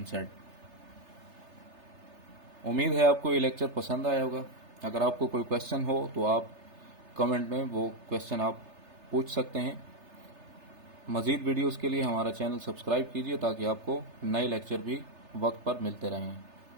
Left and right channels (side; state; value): left; late; 3.3 ms